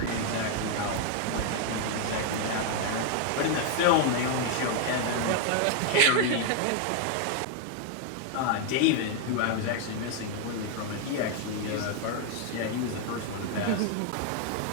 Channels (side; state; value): both; different; correlation 0.00